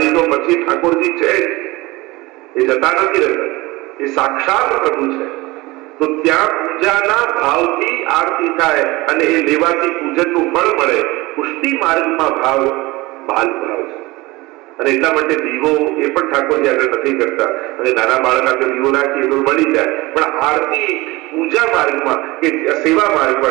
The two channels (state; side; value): quieter; left; 21.4 dB